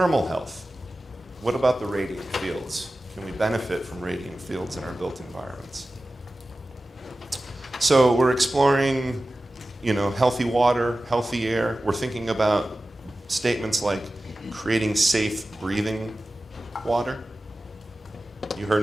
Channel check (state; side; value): normal; both; correlation 0.95